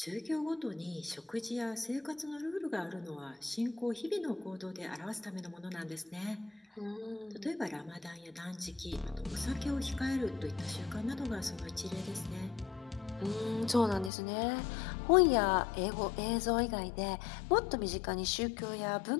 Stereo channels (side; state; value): right; drops out; at 14.1 s